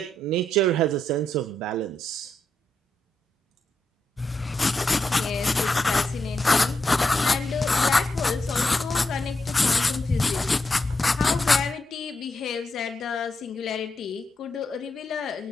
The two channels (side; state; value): both; normal; correlation 0.84